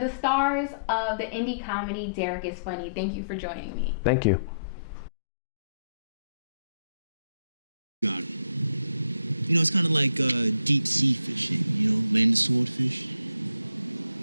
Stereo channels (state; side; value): inverted; both; correlation -0.70